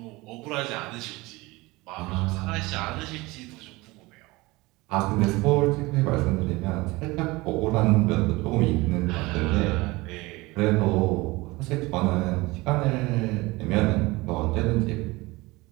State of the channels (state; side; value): quieter; left; 22.1 dB